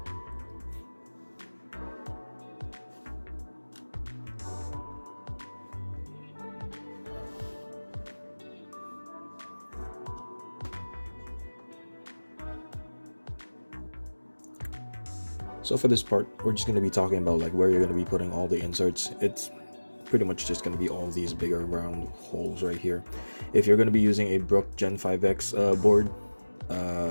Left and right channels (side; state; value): both; inverted; correlation -1.00